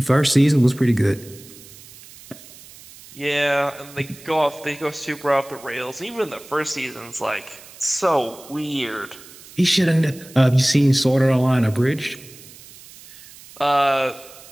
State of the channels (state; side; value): noise; right; hiss, 20 dB below the sound